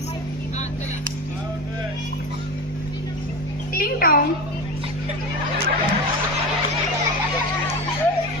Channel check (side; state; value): both; normal; correlation 0.26